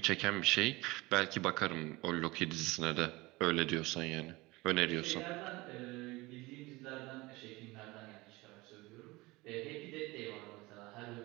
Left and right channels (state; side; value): quieter; left; 21.9 dB